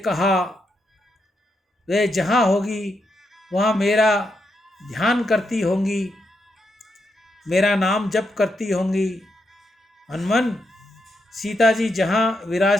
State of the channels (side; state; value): both; normal; correlation 0.82